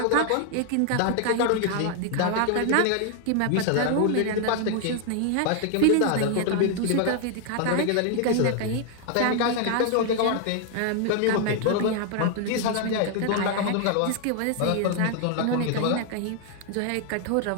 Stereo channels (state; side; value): different; both; correlation 0.00